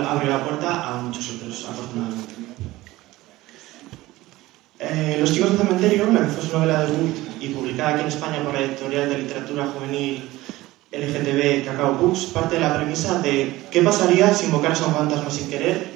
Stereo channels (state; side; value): quieter; left; 18.0 dB